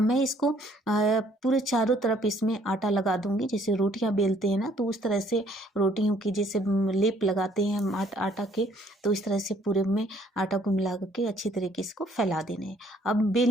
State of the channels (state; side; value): normal; both; correlation 0.63